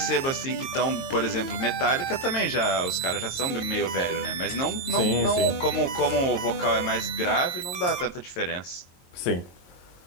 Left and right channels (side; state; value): right; late; 22 ms